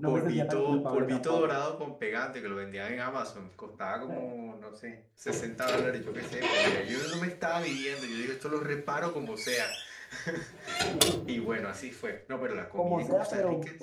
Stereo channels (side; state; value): both; identical; correlation 1.00